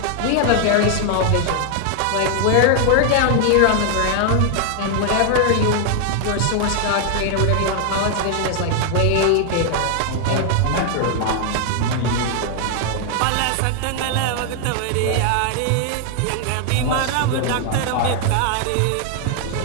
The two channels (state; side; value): different; both; correlation 0.00